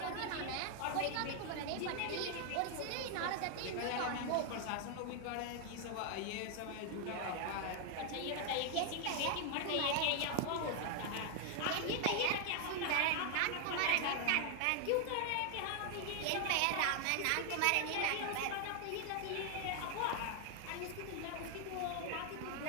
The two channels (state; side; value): different; both; correlation 0.00